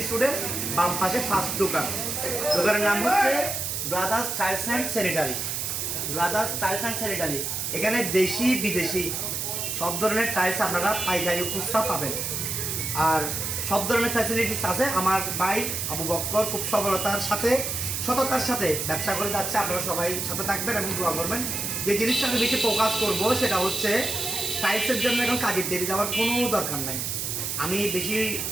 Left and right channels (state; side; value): noise; right; hiss, 2 dB below the sound